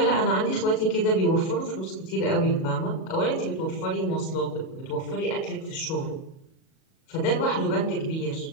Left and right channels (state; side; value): late; right; 37 ms